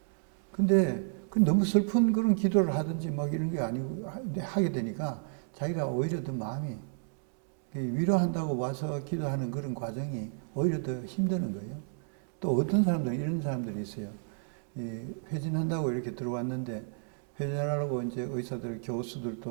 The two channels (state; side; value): silent; left; digital silence